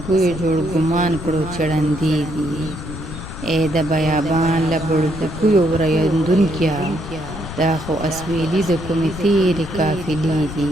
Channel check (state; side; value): noise; left; rumble, 10 dB below the sound